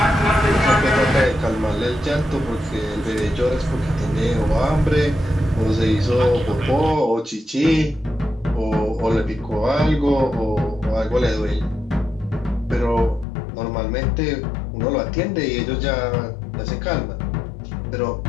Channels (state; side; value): drops out; right; at 13.2 s